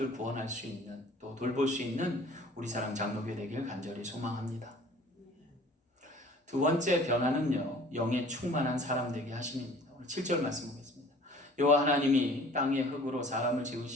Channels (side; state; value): both; normal; correlation 0.49